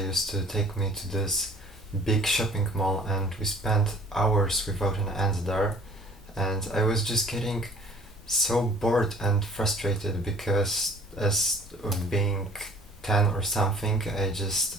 to take me to this big shopping mall, and we spent hours without an end there, and I was just getting so bored and frustrated because as of being 10 or something, I just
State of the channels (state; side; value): normal; both; correlation 0.51